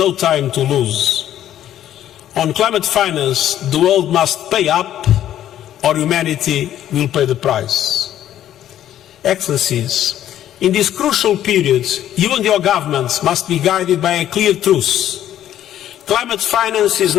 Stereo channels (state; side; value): quieter; right; 11.6 dB